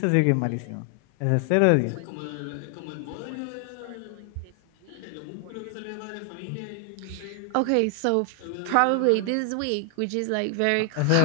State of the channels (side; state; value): both; different; correlation 0.00